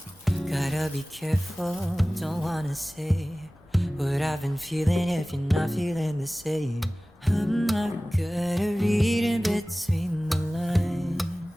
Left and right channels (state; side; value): normal; both; correlation 0.98